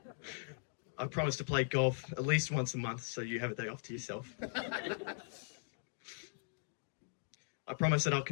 I promise to play golf at least once a month so you have a day off to yourself. I promise that I'll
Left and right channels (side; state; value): right; silent; digital silence